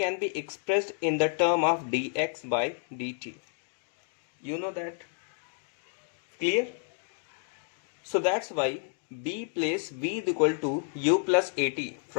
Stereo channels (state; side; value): silent; right; 58 dB below the other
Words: be expressed in the term of dx by dt. You know that? Clear? So that's why we place v is equal to u plus at.